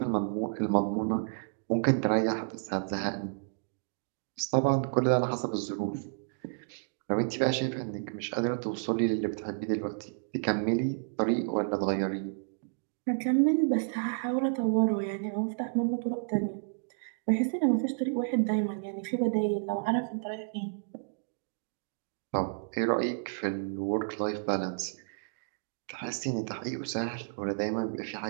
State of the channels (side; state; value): left; silent; digital silence